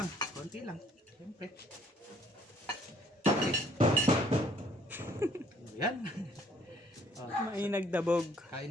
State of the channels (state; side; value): normal; both; correlation 0.62